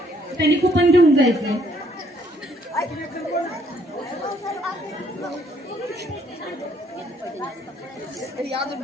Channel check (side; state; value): both; normal; correlation 0.66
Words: त्यांनी कुपन घेऊन जायचंय.